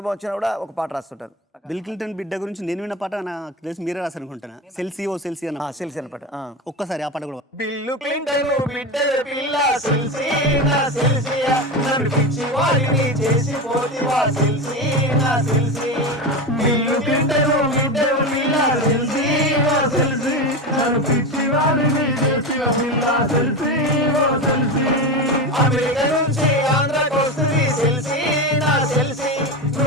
వచ్చినా కూడా ఒక పాట రాస్తుంటాను. బిల్ క్లింటన్ బిడ్డ గురించి నేను విన్న పాట నాకు తెలిసి మీరే రాశారనుకుంటున్నా. సెల్సీ ఓ సెల్సీ అన్న సెల్సీ అన్న పాట. ఒక్కసారి ఆ పాట కూడా. బిల్లు క్లింటన్ బిడ్డ పిల్ల సెల్సీ నా సెల్సీయా, నన్ను పిచ్చి వారిని చేసి పోతివా సెల్సీ నా సెల్సీ, బిల్లు క్లింటన్ బిడ్డ పిల్ల సెల్సీ నా సెల్సీ, నన్ను పిచ్చి వారిని చేసి పిల్ల సెల్సీ ఓ సెల్సీ, అమెరికా నుంచి ఆంధ్రాకి వస్తుంది సెల్సీ నా సెల్సీ,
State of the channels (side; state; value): both; normal; correlation 0.20